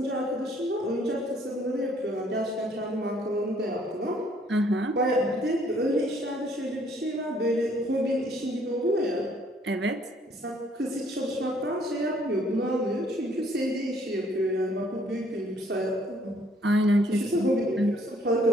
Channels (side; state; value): both; normal; correlation 0.63